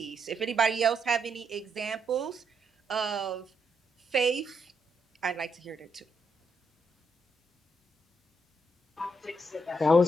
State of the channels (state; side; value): normal; both; correlation 0.78